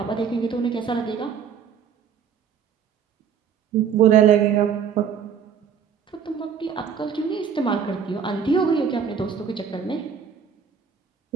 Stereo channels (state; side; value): quieter; left; 7.3 dB